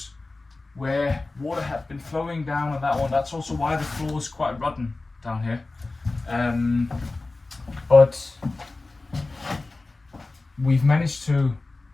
where water had been flowing down on that one. That's also why the floor is quite rotten down here. But we've managed to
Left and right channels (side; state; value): right; quieter; 3.3 dB